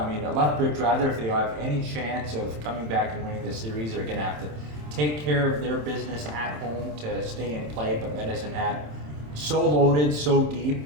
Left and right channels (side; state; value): left; late; 27 ms